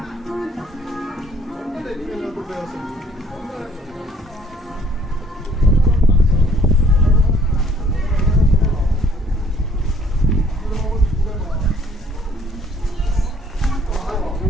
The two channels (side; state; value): both; normal; correlation 0.59